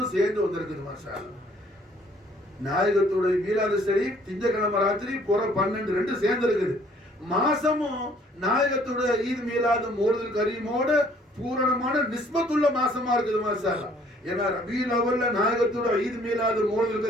சேர்ந்து வந்திருக்குது மாஷாஅல்லாஹ். நாயகத்துடைய மீலாது ஷரீஃப் திங்கட்கிழமை ராத்திரி புற 12 ரெண்டு சேர்ந்து இருக்குது. மாசமும் நாயகத்துடைய ஈத் மீலாது மௌலிதுல் கரீமோட பூரணமான நிஸ்பத்துள்ள மாசமா இருக்குது மாஷாஅல்லாஹ். ஏன்னா ரபியுல் அவல்ல நாயகத்தோட ஈத் மீலாது மௌலிதுல்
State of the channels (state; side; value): normal; both; correlation 0.60